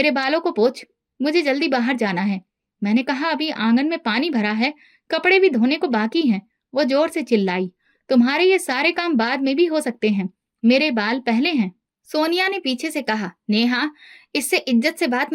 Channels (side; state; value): both; identical; correlation 1.00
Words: बालों को पोंछ, मुझे जल्दी बाहर जाना है। मैंने कहा, अभी आंगन में पानी भरा है, कपड़े भी धोने को बाकी हैं। वो जोर से चिल्लाई, तुम्हारे ये सारे काम बाद में भी हो सकते हैं, मेरे बाल पहले हैं। सोनिया ने पीछे से कहा, नेहा, इससे इज्जत से बात